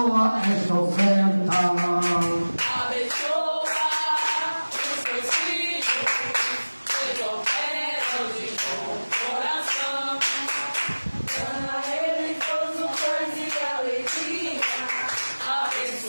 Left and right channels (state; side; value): inverted; both; correlation -1.00